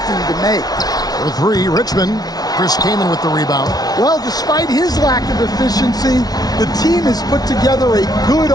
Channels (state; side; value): late; right; 0.19 ms